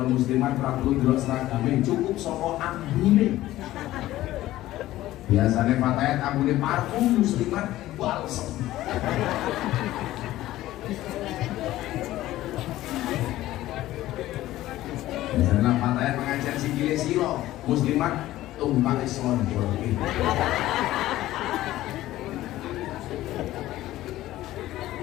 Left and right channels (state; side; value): quieter; right; 15.3 dB